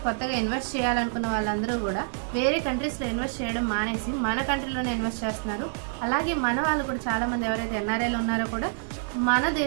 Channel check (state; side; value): silent; left; digital silence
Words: కొత్తగా ఇన్వెస్ట్ చేయాలనుకున్న వాళ్ళందరూ కూడా వేరే కంట్రీస్లో ఇన్వెస్ట్ చేయడం మానేసి మన కంట్రీలోనే ఇన్వెస్ట్ చేస్తున్నారు. అలాగే మన వాళ్ళు కూడా చాలామంది ఎవరైతే ఎన్ఆర్ఐలు ఉన్నారో కూడా మన